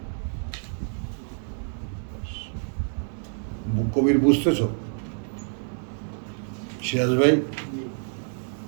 কবির বুঝতেছ? সিরাজ ভাই,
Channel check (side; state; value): left; silent; 60 dB below the other